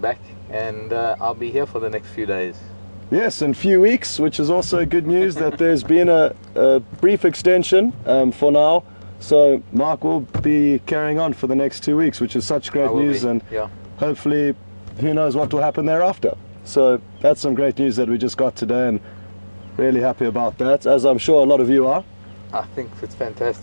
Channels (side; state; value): both; inverted; correlation -1.00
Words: back, and I'll be here for the next few days. Yes, in a few weeks, which is also good news that there's been a brief extension for now. So Mark will be carrying on for the next 2 weeks, which is such great news, and hopefully who knows what will happen thereafter. So that's some great news that we just got today, and really happy about that, as I'm sure a lot of you are. I think it's